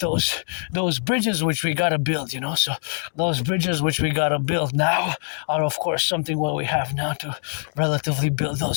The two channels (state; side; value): silent; right; 63 dB below the other